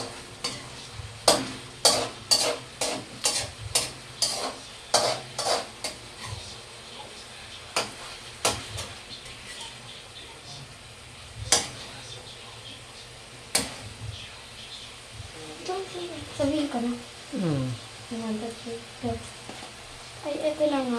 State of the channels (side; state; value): both; identical; correlation 1.00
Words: Sabihin ko na. Ay, ito na